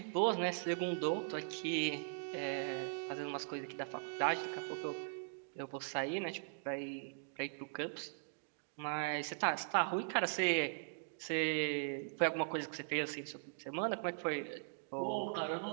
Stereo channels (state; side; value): silent; left; digital silence